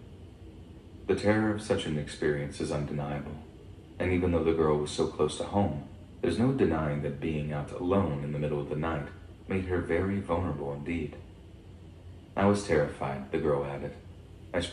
The terror of such an experience is undeniable, and even though the girl was so close to home, there's no denying that being out alone in the middle of the night made her very vulnerable indeed. I was terrified, the girl added. I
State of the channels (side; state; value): both; identical; correlation 1.00